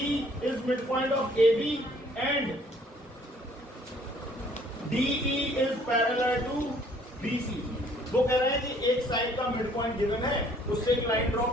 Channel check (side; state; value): both; normal; correlation 0.60